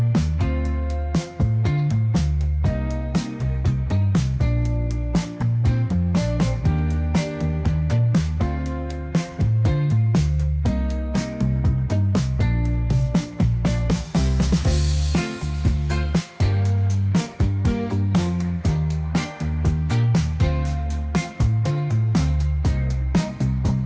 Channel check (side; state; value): both; identical; correlation 1.00